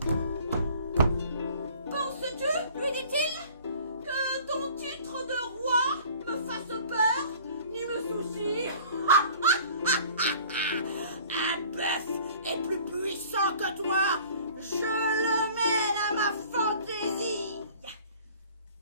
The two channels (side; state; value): both; inverted; correlation -0.49